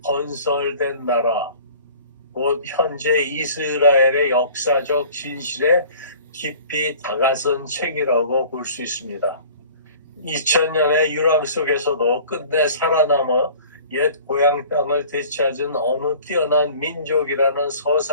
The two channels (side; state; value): both; inverted; correlation -0.47